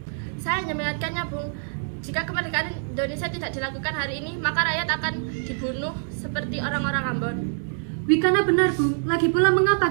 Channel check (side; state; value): left; silent; digital silence